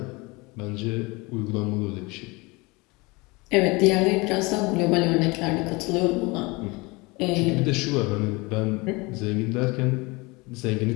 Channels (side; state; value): right; quieter; 25.3 dB